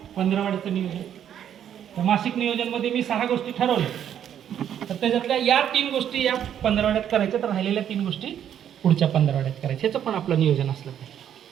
15वाड्याचं नियोजन. तर मासिक नियोजनमध्ये मी 6 गोष्टी ठरवल्या, तर त्याच्यातल्या या 3 गोष्टी या 15वाड्यात करायच्या, तर राहिलेल्या 3 गोष्टी पुढच्या 15वाड्यात करायच्या. ह्याचं पण आपलं नियोजन असलं पाहिजे.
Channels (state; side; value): quieter; left; 9.7 dB